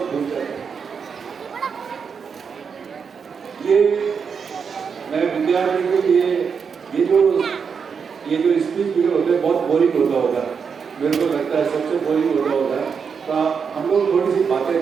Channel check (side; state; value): left; quieter; 6.2 dB